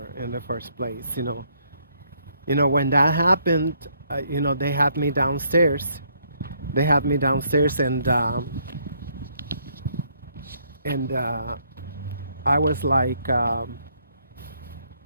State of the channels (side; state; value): both; inverted; correlation -0.69